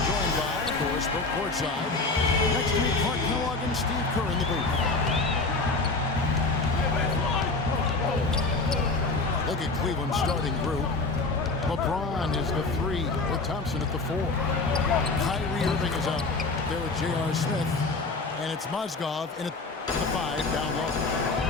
joined by, of course, Brooke courtside. Next to me, Clark Kellogg and Steve Kerr in the booth. Look at Cleveland's starting group. LeBron is the 3 with Thompson at the 4. Kyrie Irving is up there with J.R. Smith. And it's Mozgov in at the 5 down low.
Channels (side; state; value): right; quieter; 3.6 dB